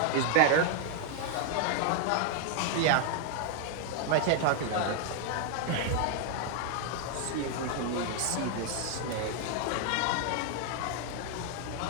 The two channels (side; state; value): both; different; correlation 0.00